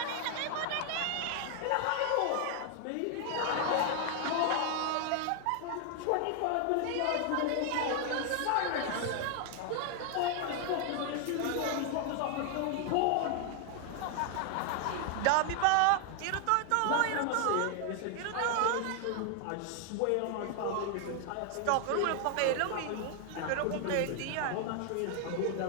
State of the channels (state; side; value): different; both; correlation 0.00